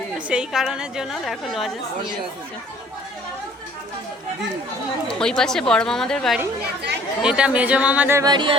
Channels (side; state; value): both; normal; correlation 0.55